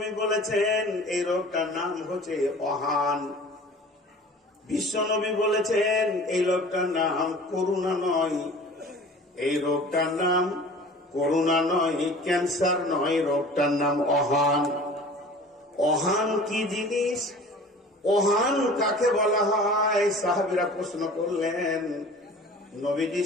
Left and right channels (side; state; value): both; normal; correlation 0.43